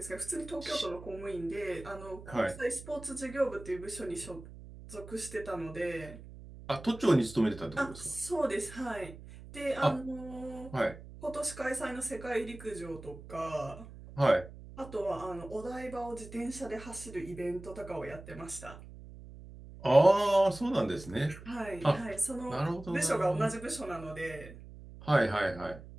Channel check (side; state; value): right; noise; hum, 15 dB below the sound